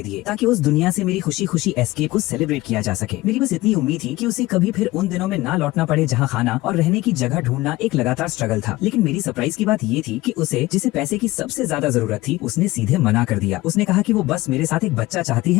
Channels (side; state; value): right; quieter; 18.9 dB